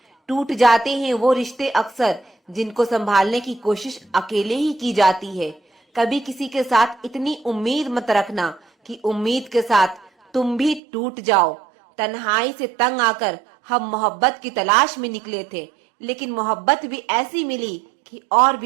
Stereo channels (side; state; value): left; drops out; at 10.8 s